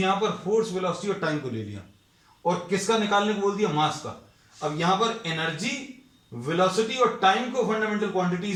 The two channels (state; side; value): identical; both; correlation 1.00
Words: पर फोर्स, वेलोसिटी और टाइम को ले लिया और किसका निकालने को बोल दिया, मास का। अब यहां पर एनर्जी, वेलोसिटी और टाइम को फंडामेंटल